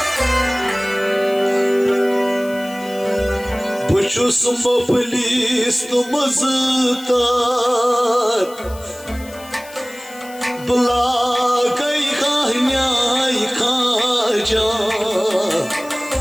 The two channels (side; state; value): left; noise; hiss, 20 dB below the sound